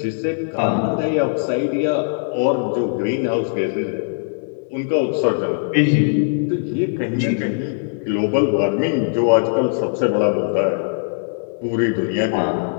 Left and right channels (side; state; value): right; silent; digital silence